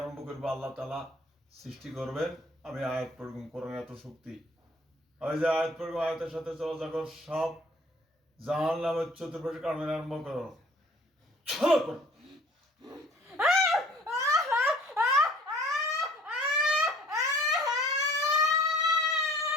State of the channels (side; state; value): both; normal; correlation 0.53